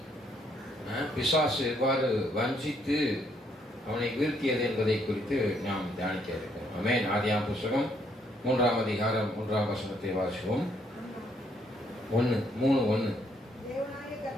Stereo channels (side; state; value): both; normal; correlation 0.71